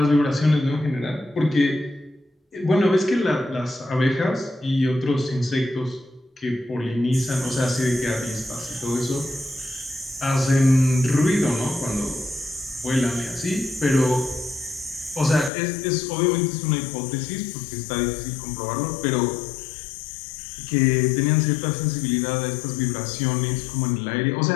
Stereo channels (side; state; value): right; drops out; at 15.5 s